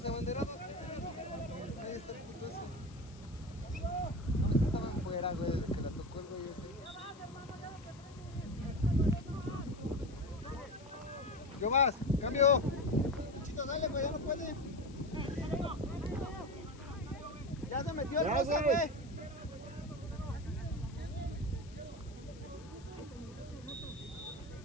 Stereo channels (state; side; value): noise; left; hiss, 23 dB below the sound